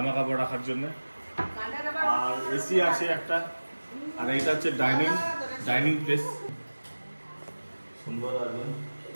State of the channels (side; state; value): both; inverted; correlation -1.00